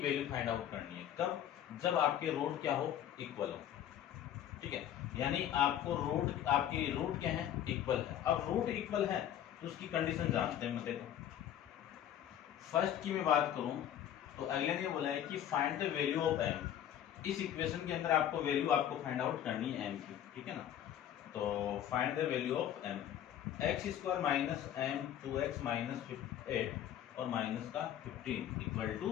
वैल्यू फाइंड आउट करनी है। कब? जब आपके रूट क्या हो, इक्वल हो। ठीक है, यानी आपको रूट, आपकी रूट क्या है, इक्वल है। अब रूट इक्वल है तो उसकी कंडीशन जानते हैं। देखो फर्स्ट की मैं बात करूं तो अगले ने बोला है कि find the value of m। इस इक्वेशन के अंदर आपको वैल्यू आपको फाइंड आउट करनी है m की। ठीक है ना, तो find the value of m। x square minus m 2x minus 8 और माइनस का 15 इक्वल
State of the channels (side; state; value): right; quieter; 10.8 dB